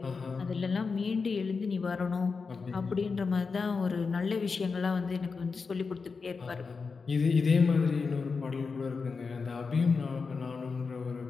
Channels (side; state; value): right; quieter; 4.8 dB